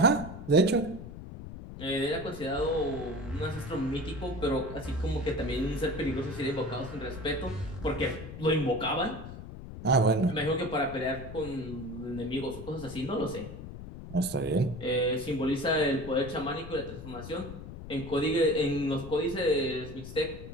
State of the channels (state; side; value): noise; left; rumble, 11 dB below the sound